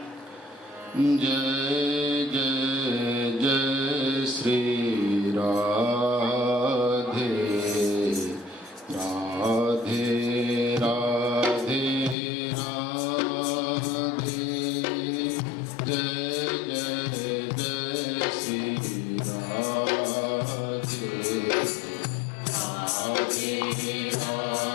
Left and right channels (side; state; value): right; drops out; at 12.2 s